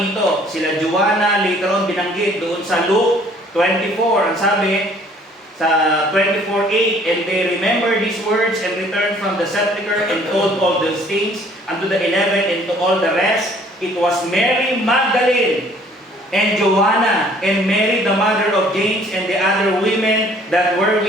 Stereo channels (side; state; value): both; normal; correlation 0.57